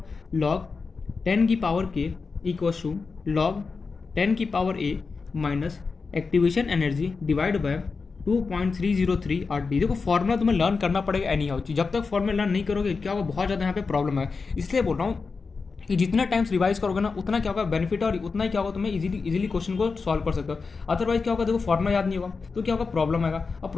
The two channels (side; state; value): right; quieter; 4.6 dB